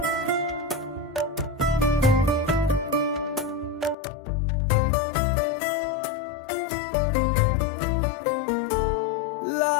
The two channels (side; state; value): right; drops out; at 4.0 s